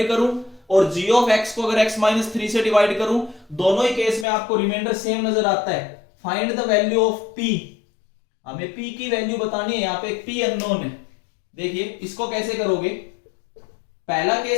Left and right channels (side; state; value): right; drops out; at 4.2 s